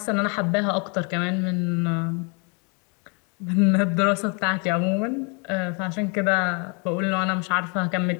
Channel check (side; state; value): right; quieter; 34.5 dB